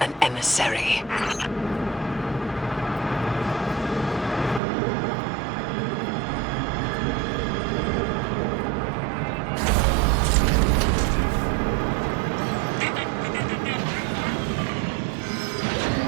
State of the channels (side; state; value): left; drops out; at 4.6 s